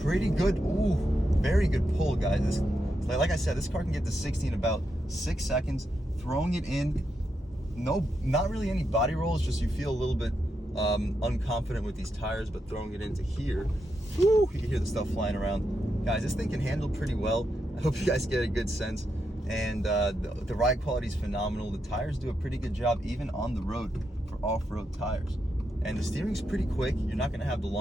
pretty good. Ooh, very good pull, guys. like I said, this car can get to 60 in about 6 seconds. Throwing it in, not really any body rolls, just you feel a little bit unconfident with these tires, but throwing it into here, whoo, you can hear the stuff flying around. Guys, this thing can handle pretty well. I hope you guys get a good sense. And the ride quality is phenomenal. The tires do a pretty good job, even on the road, for off-road tires. And the steering's pretty quick. You're not gonna have the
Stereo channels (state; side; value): normal; both; correlation 0.84